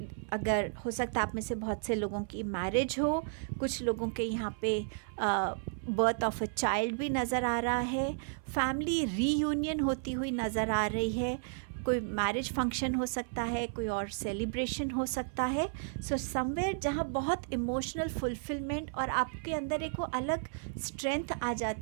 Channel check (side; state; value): left; silent; 56 dB below the other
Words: हो सकता है आप में से बहुत से लोगों की मैरिज हो, कुछ लोगों के यहाँ पे बर्थ ऑफ अ चाइल्ड भी नज़र आ रहा है, फैमिली रीयूनियन होती हुई नज़र आ रही है, कोई मैरिज फंक्शन हो सकता है, कोई और सेलिब्रेशन हो सकता है। सो समवेयर जहाँ बहुत इमोशनल फुलफिलमेंट और आपके अंदर एक वो अलग स्ट्रेंथ आ